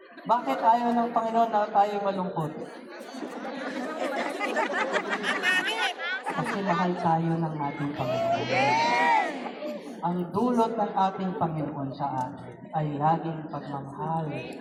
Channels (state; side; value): identical; both; correlation 1.00